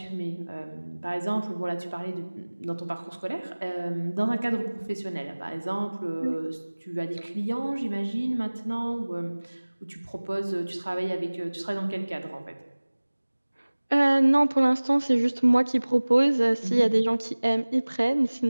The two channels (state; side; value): inverted; both; correlation -1.00